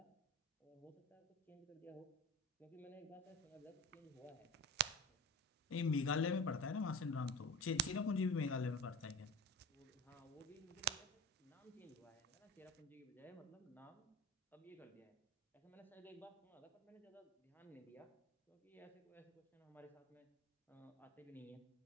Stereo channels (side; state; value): both; normal; correlation 0.33